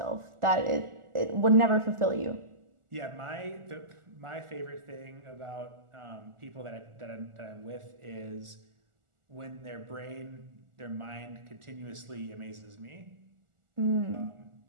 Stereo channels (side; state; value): left; late; 1.4 ms